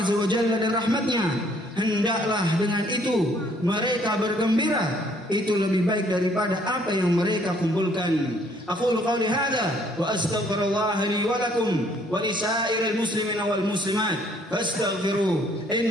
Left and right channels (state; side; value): normal; both; correlation 0.63